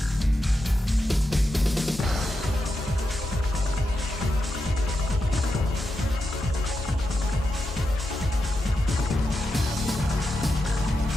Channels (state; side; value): normal; both; correlation 0.87